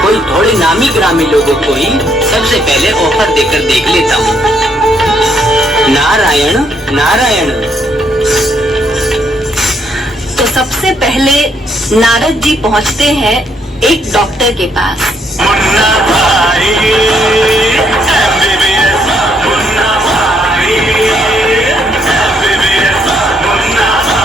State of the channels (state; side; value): normal; both; correlation 0.72